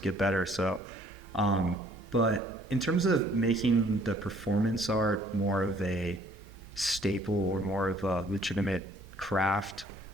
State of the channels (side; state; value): both; normal; correlation 0.60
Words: get better. So but in terms of making the performance art more of a staple or more of a legitimate craft,